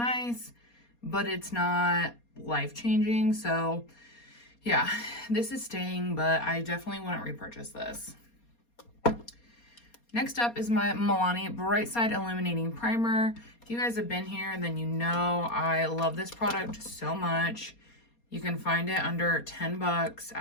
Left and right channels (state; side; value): late; right; 4.2 ms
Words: but it's not life-changing. So yeah, this is staying, but I definitely wouldn't repurchase this. Next up is my Milani Bright Side Illuminating Primer. If you guys have been here, then you know I love this product so much. You can find it under $10